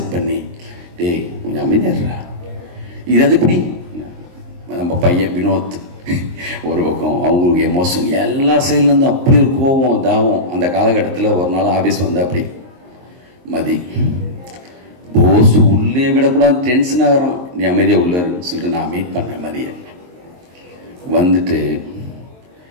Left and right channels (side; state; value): left; late; 23 ms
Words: பண்ணி, டேய் கொஞ்சம் அமைதியாடுறா, இது அது இப்படி. நம்ம பையன் வினோத் ஒரு பக்கம், அவங்களுக்கு எமோஷன் எல்லா சைட்லேருந்து அப்படி ஒரு கோபம் தாவம். அந்த காலகட்டத்தில் ஒரு நாள் ஆஃபீஸ் வந்து அப்படி மதி போஸ் உள்ளே விடக்கூடாது, டென்ஷன் ஆகிறான், நீ அமைதியாக உள்ளன்னு சொல்லிட்டு நான் மீட் பண்ணேன். மதியை வந்துட்டு